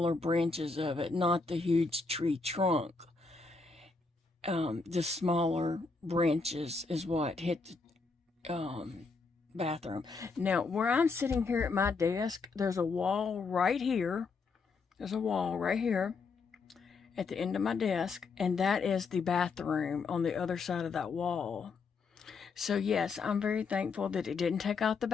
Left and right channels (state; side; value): quieter; right; 4.4 dB